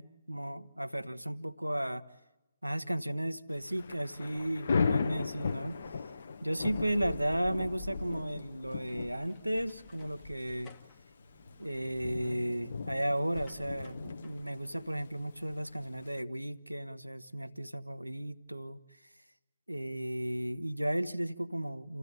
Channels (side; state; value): both; inverted; correlation -0.94